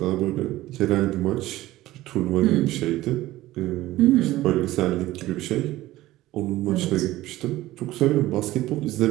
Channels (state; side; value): quieter; left; 16.5 dB